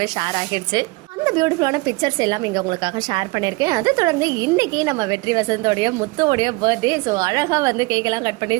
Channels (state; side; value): quieter; left; 24.7 dB